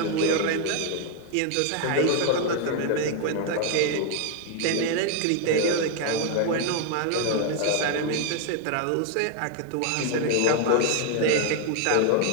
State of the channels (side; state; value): both; different; correlation 0.01